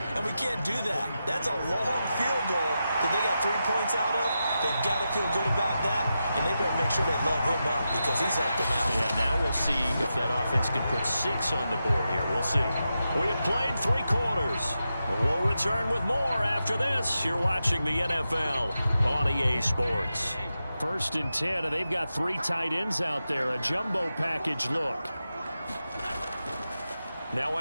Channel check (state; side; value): inverted; both; correlation -0.89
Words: and we can't do that. That's a long field goal that they got 3 points out of. They've got to feel good about that, and they better make sure they love him up because he's helped them out. Yeah, now we'll see if that offense can put 6 on the board here. We'll see. We have played 3 quarters. We'll return with more after this. You're watching the NFL on EA Sports. 1st and 10, and they've got 3 tight ends out there. A jumbo package look. Now